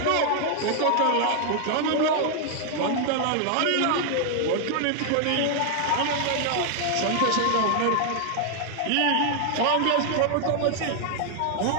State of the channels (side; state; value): both; different; correlation 0.00